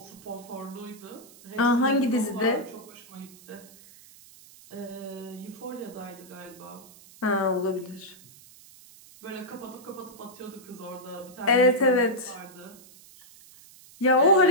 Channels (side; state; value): right; noise; hiss, 22 dB below the sound